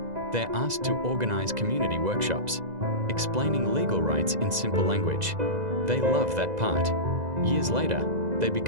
they're asked to organize community workshops, explaining legal rights in simple language. They love that part. Years later, they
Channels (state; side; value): late; left; 2.0 ms